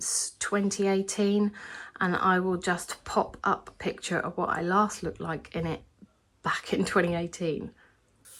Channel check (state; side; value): identical; both; correlation 1.00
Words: 2018, and I will just pop up a picture of what I last looked like in it back in 2018.